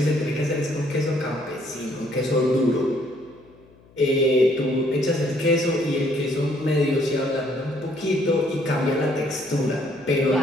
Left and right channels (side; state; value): left; noise; hum, 27 dB below the sound